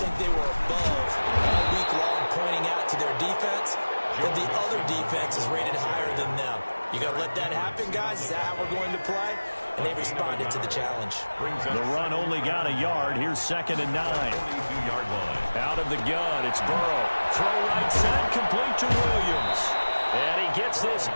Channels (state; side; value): inverted; both; correlation -1.00